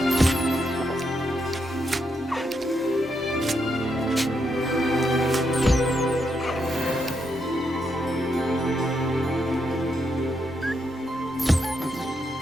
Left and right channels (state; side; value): normal; both; correlation 0.80